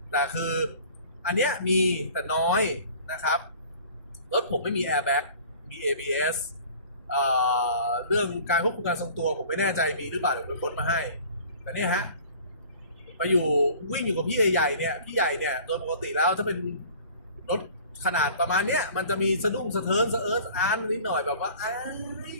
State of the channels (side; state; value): both; inverted; correlation -0.47